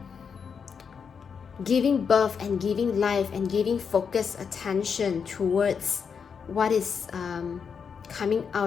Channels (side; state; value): right; quieter; 6.4 dB